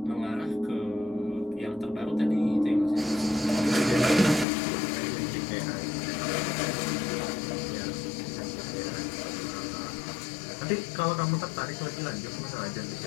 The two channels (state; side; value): drops out; right; at 4.5 s